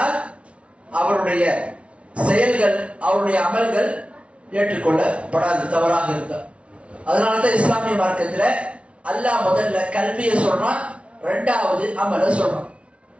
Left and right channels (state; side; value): late; left; 0.061 ms